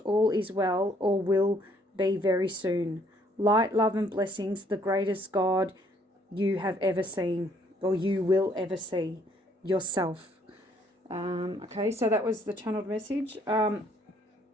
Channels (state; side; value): normal; both; correlation 0.65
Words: all is well, or will be very soon. Light, love, and blessings, the greatest God you have ever seen, or you will ever see, yourself. Okay, so that was the channeled message. I